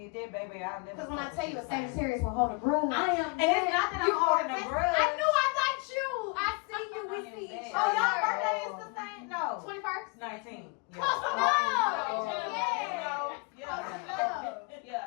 that, baby, I'll never. Because when I fuck tell with you a the same. Sagittarius will hold a grudge. I am. And it's not that I'm holding a grudge. I knew I got you. I see you. We see each Oh, other. y'all birthday is the same? No. 21st. 19. Close Yeah. enough. Yeah. Yeah. Close enough. Yeah,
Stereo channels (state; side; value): quieter; right; 29.8 dB